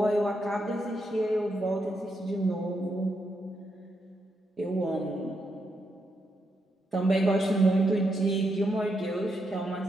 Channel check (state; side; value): normal; both; correlation 0.81